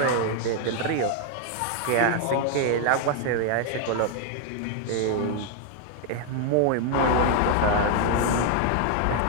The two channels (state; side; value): different; both; correlation 0.00